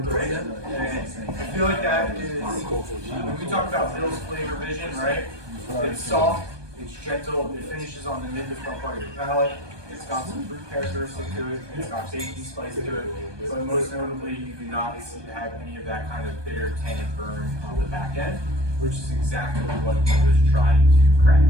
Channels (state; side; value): late; left; 1.2 ms